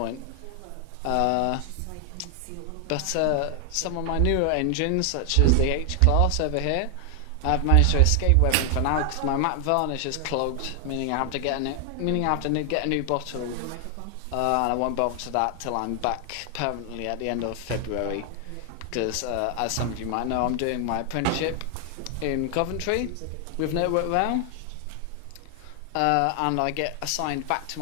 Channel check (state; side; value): different; both; correlation 0.00